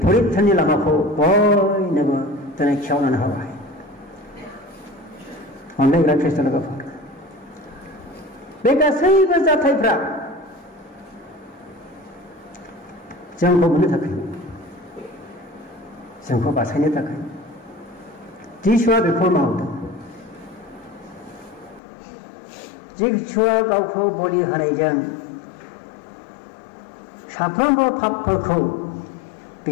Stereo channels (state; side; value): drops out; right; at 21.8 s